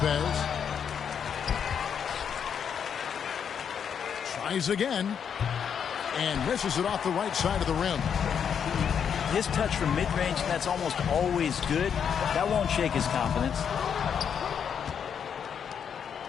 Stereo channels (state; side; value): quieter; right; 7.6 dB